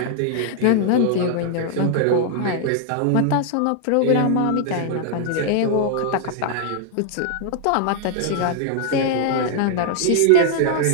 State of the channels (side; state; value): both; different; correlation -0.01